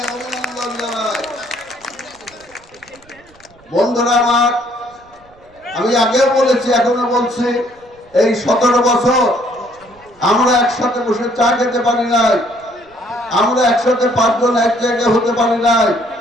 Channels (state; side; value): noise; right; rumble, 29 dB below the sound